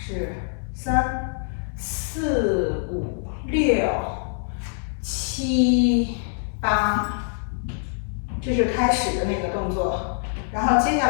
3、4、5、6、7、8，这是开始的那个动作。然后接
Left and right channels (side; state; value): right; silent; digital silence